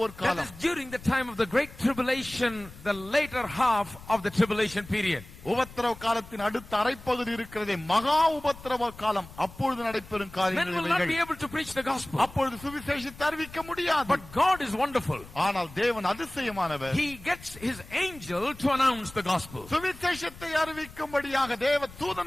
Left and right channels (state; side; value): noise; left; rumble, 18 dB below the sound